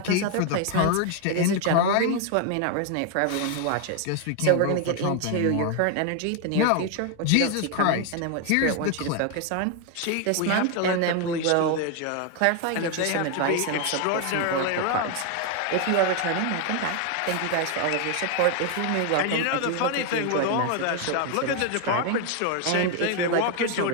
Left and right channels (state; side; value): different; both; correlation 0.01